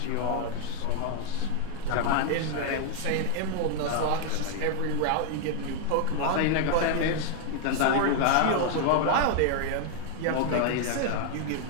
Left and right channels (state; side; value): different; both; correlation 0.00